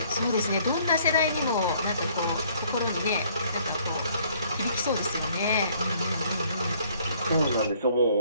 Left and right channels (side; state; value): both; inverted; correlation -0.61